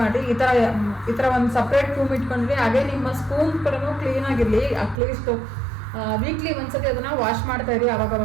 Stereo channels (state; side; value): drops out; left; at 5.0 s